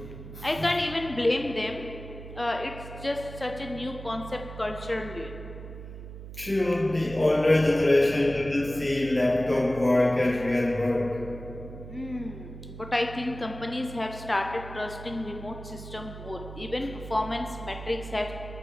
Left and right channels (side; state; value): right; noise; hum, 12 dB below the sound